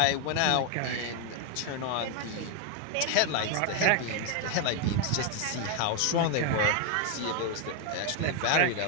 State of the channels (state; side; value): different; both; correlation 0.01